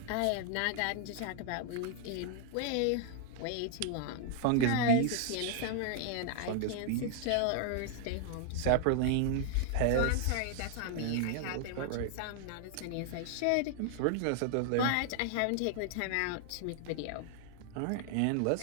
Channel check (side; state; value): both; different; correlation -0.01